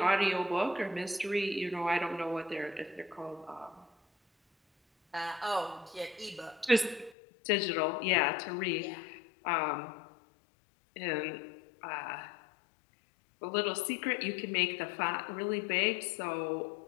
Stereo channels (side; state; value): right; drops out; at 7.2 s